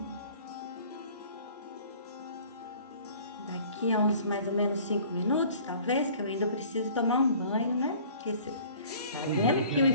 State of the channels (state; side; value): inverted; both; correlation -0.50